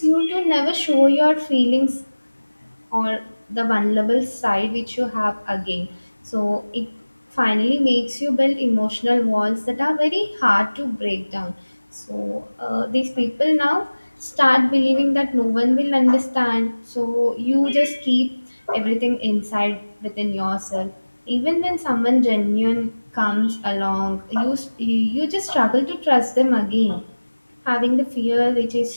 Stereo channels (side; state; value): both; inverted; correlation -1.00